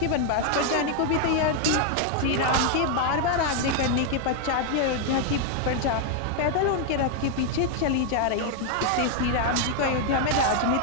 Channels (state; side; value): different; both; correlation 0.00